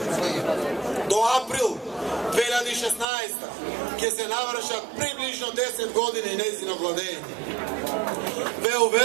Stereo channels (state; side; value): drops out; left; at 3.1 s